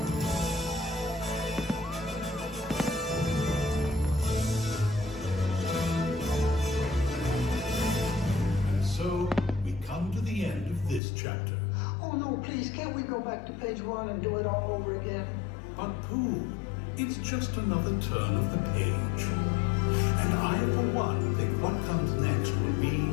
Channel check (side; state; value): right; drops out; at 11.0 s